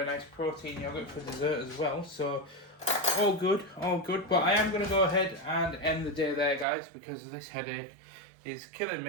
nice protein yogurt for dessert as well. So all good, all good. But I am going to go ahead and end the day there, guys, because this headache is killing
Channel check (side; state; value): left; drops out; at 6.7 s